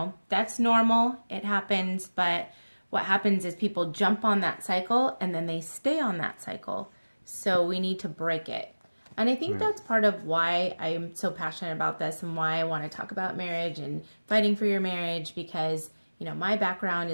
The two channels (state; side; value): inverted; both; correlation -1.00